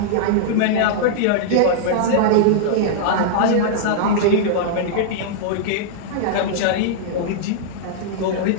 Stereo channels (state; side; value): different; both; correlation -0.01